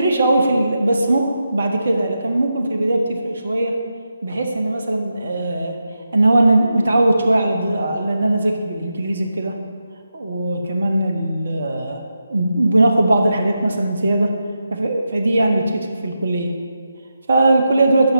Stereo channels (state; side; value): inverted; both; correlation -0.88